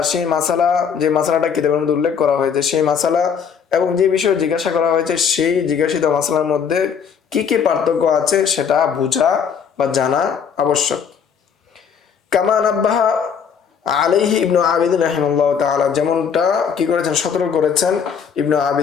সেই মাসালা, যে মাসালাটা কিতাবের মধ্যে উল্লেখ করা হয়েছে সেই মাসালা এবং যে বিষয়ে জিজ্ঞাসা করা হয়েছে সেই জিজ্ঞাসিত মাসালার মধ্যে কি কি পার্থক্য আছে সেটা বোঝা বা জানা আবশ্যক। কামা নাব্বাহা আলাইহি ইবনু আবিদিন রাহিমাহুল্লাহ তাআলা, যেমনটা কি করেছেন, সতর্ক করেছেন ইবনু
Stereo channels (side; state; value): right; quieter; 7.0 dB